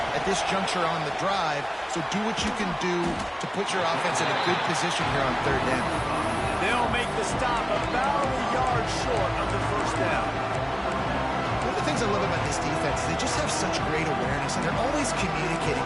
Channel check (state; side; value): identical; both; correlation 1.00